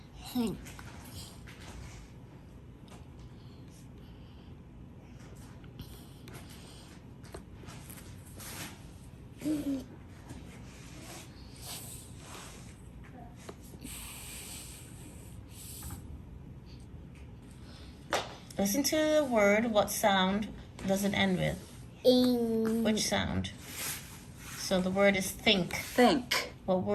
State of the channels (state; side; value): identical; both; correlation 1.00